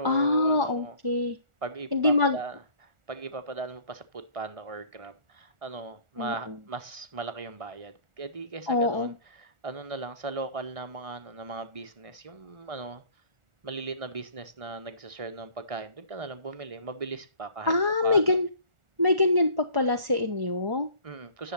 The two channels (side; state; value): left; late; 1.4 ms